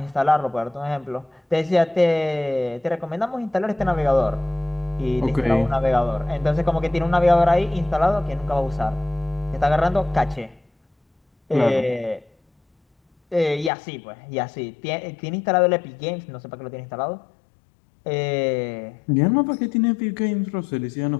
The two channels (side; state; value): right; drops out; at 13.7 s